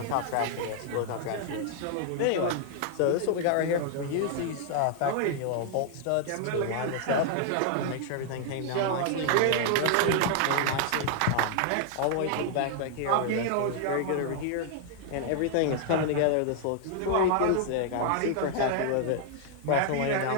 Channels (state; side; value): different; both; correlation 0.00